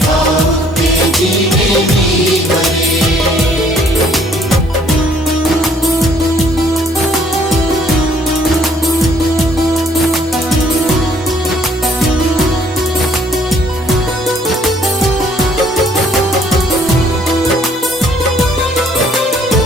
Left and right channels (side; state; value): both; normal; correlation 0.62